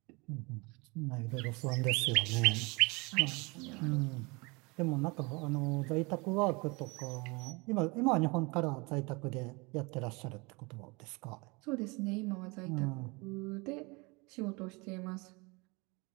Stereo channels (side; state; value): left; quieter; 27.1 dB